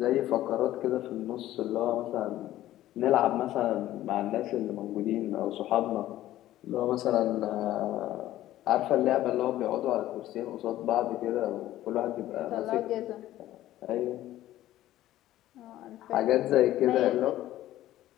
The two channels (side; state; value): right; quieter; 14.2 dB